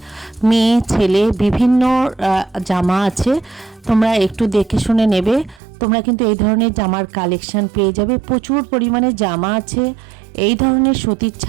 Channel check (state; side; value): drops out; left; at 5.6 s